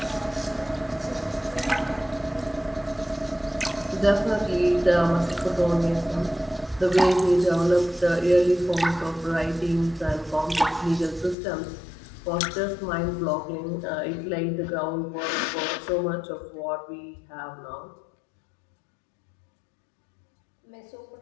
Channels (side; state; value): right; drops out; at 11.4 s